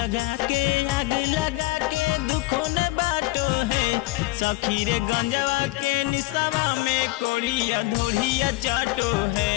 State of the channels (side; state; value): right; quieter; 20.7 dB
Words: के आग लगा के दुखों ने बाटो है सखी रे गंजवा के निशावा में कोढ़िया धोड़िया चाटो है।